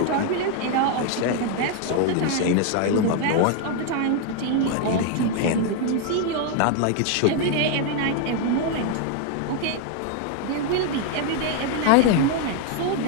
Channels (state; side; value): different; both; correlation 0.01